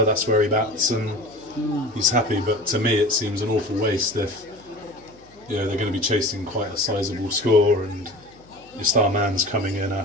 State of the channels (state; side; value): noise; left; hum, 27 dB below the sound